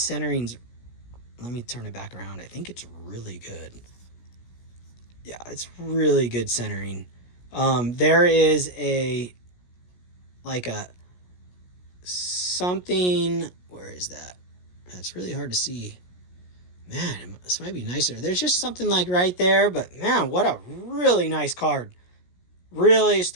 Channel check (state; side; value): late; right; 17 ms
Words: Let me turn it back around. I think it's really good. Yeah, it's really good centering. There is something... Where is that? That's really hard to see. Man, this might be nicer. There's just something right there. But man, what a really nice card. Really